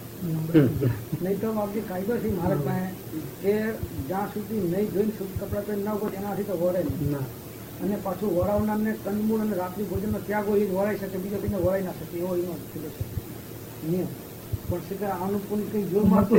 નંબર નહીં તો બાપજી કાયદો છે મહારાજ પાસે કે જ્યાં સુધી નહીં જોઈને શુદ્ધ કપડાં પહેરી ના ઉભો એનાથી તો વરે નહીં. ના અને પાછું વરાવનારને કંદમૂળ અને રાત્રિ ભોજનનો ત્યાગ હોય એ જ વરાઈ શકે, બીજા કોઈને વરાઈ ના શકે એવો એનો કીધો છે નિયમ. પણ છે કે આનું પણ કંઈ જોર મારતું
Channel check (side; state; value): both; identical; correlation 1.00